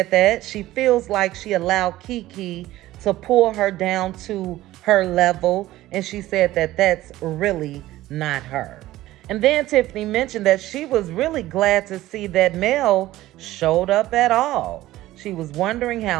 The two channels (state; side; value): quieter; left; 15.9 dB